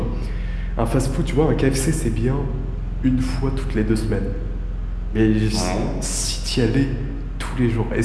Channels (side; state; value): both; identical; correlation 1.00